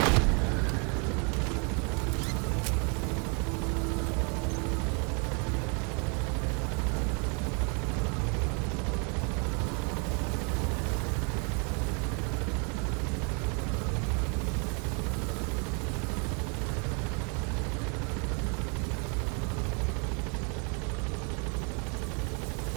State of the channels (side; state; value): left; quieter; 35.9 dB